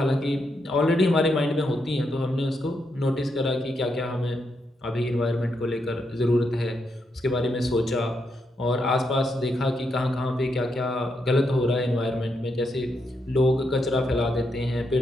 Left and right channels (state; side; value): normal; both; correlation 0.81